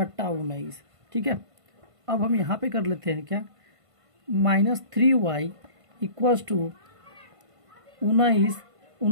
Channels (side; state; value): left; late; 1.5 ms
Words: 19, ठीक है। अब हम यहाँ पे कर लेते हैं क्या, माइनस 3y इक्वल टू